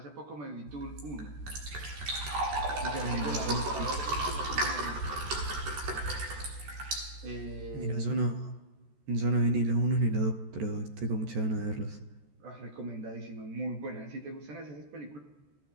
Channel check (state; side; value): late; left; 14 ms